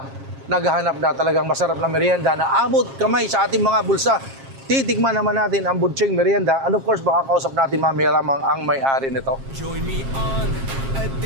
naghahanap na talagang masarap na merienda na abot kamay sa ating mga bulsa. Titikman naman natin ang budcheng merienda. And of course, makakausap natin mamaya lamang ang may-ari nito. Join me on a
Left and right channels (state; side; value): late; left; 7.4 ms